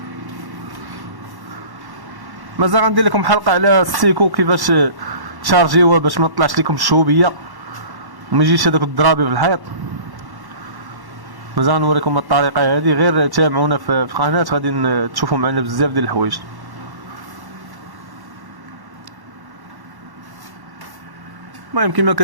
مازال غندير لكم حلقه على السيكو كيفاش تشارجيوها باش ما تطلعش لكم الشوبيه وما يجيش هذاك الضرابي في الحيط. مازال نوريكم الطريقه هذه، غير تابعونا في قناه غادي تشوفوا معنا بزاف ديال الحوايج. المهم كما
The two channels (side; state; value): left; late; 1.1 ms